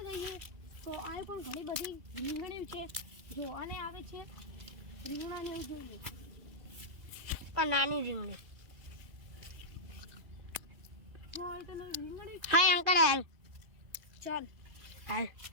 જઈએ તો આ પણ ઘણી બધી રીંગણીઓ છે. જો આને આવે છે રીંગણાને જોઈએ. આ નાની રીંગણી. રીંગણી હાય અંકલ હાલ. ચાલ હાલ.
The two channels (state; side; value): late; left; 2.3 ms